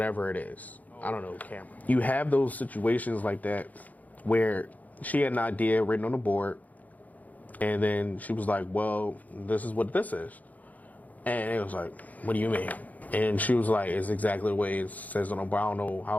it is. I don't know, camera. You have those situations like that where she had an idea written on the board, and then she was like, well, this is what this is. And it was like, what do you mean? And she was like, it's exactly the way it says on the board. I don't know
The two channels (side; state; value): right; late; 0.078 ms